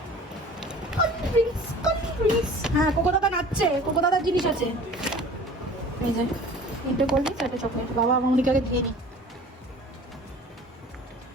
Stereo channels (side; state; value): both; normal; correlation 0.44